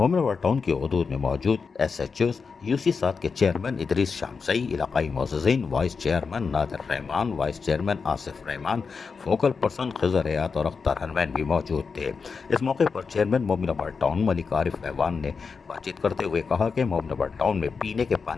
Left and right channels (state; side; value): quieter; right; 5.2 dB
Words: टाउन की हदूद में मौजूद SHOs UC7 के चेयरमैन इदरीस शामसई, इलाकाई मोअज़्ज़िज़ीन, vice chairman Nadir Rehman, vice chairman Asif Rehman, focal person Khizar Hayat और अख्तर हनमैन भी मौजूद थे। इस मौके पर चेयरमैन मोमिनाबाद टाउन मलिक आरिफ ऐवान ने बातचीत करते हुए कहा कि मोमिनाबाद टाउन में पीने के